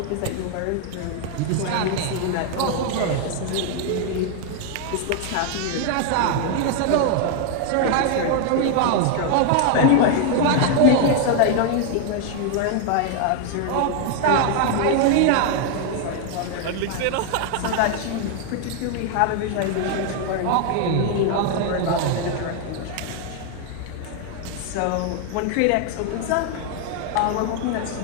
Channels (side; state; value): both; different; correlation 0.00